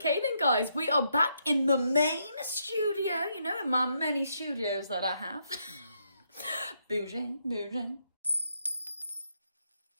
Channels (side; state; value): both; inverted; correlation -0.77